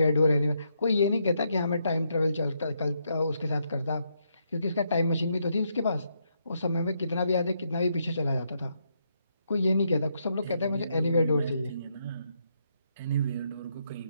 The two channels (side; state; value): both; inverted; correlation -0.78